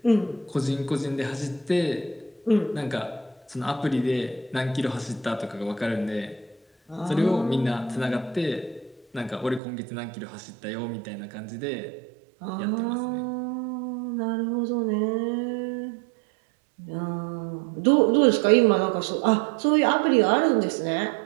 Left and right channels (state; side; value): drops out; left; at 9.6 s